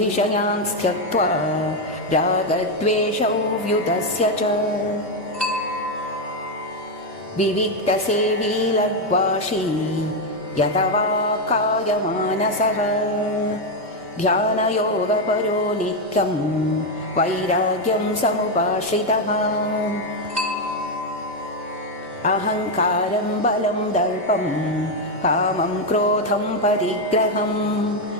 त्यक्त्वा रागद्वेषौ व्युतस्य च विविक्तसेवी लग्वाशी यतवा कायमानसः ध्यानयोगपरो नित्यं वैराग्यं समुपाश्रितः अहङ्कारं बलं दर्पं कामं क्रोधं परिग्रहं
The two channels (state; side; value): normal; both; correlation 0.04